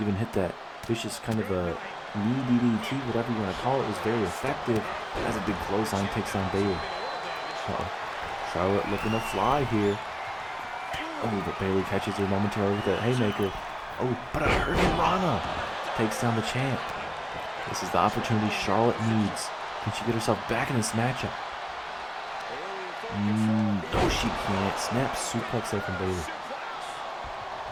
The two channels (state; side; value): identical; both; correlation 1.00